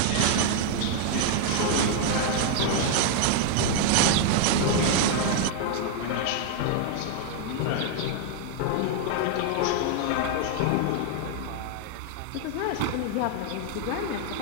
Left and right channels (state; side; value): different; both; correlation 0.00